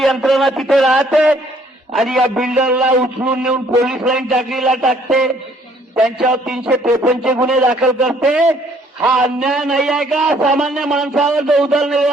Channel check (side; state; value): both; normal; correlation 0.62